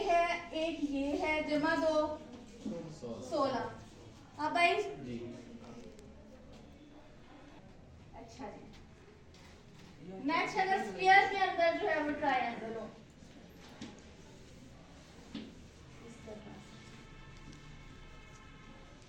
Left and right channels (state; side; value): identical; both; correlation 1.00